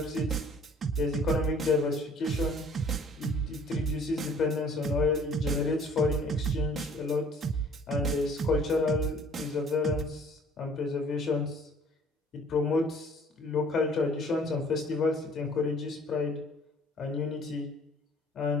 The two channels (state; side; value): normal; both; correlation 0.55